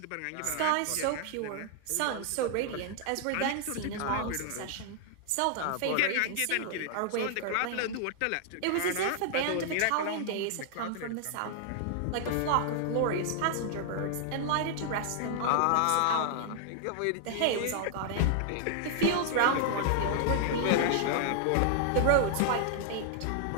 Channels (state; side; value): different; both; correlation 0.00